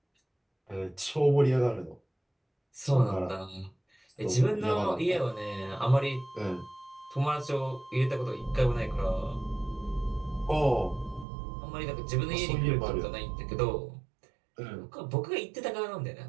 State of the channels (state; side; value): drops out; left; at 11.2 s